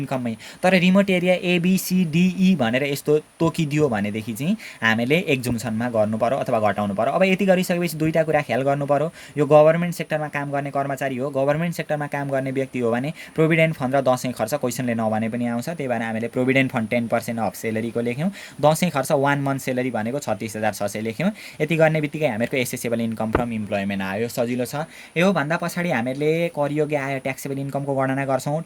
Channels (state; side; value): identical; both; correlation 1.00